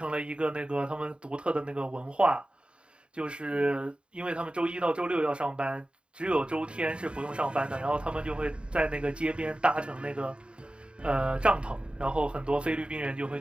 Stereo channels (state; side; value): late; left; 0.054 ms